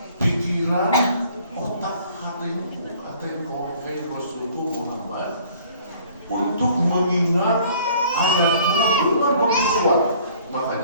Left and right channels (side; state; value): both; inverted; correlation -0.55